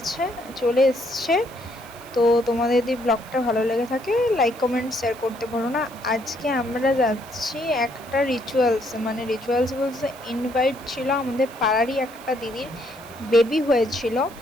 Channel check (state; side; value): noise; right; hiss, 21 dB below the sound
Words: এসছে। তো তোমাদের যদি ব্লগটা ভালো লেগে থাকে লাইক কমেন্ট শেয়ার করতে ভুলো না। আজকে আমরা যাচ্ছি একটা রিচুয়ালস বলতে ইনভাইট ছিল আমাদের পাড়ারই একটা দিদির বেবি হয়েছিল।